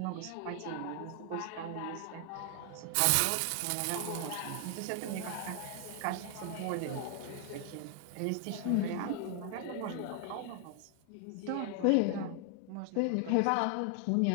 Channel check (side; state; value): both; different; correlation 0.00